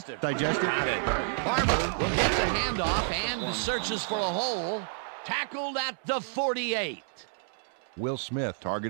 Got it. Barber will get the handoff and searches for a hole. Tackled at the 48. Will Smith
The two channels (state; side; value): silent; left; 58 dB below the other